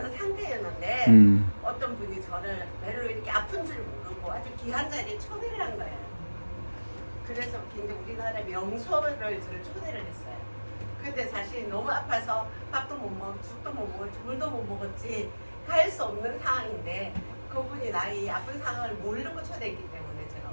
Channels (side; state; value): both; inverted; correlation -1.00